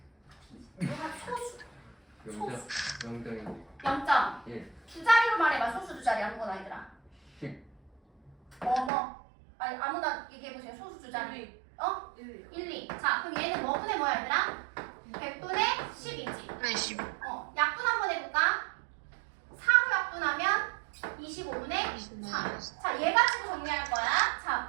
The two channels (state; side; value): drops out; left; at 8.9 s